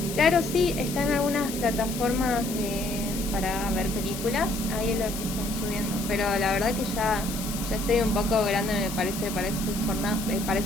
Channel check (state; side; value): noise; left; hiss, 9 dB below the sound